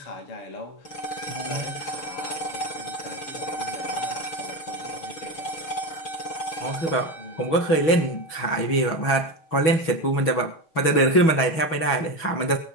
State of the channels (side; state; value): right; late; 6.2 ms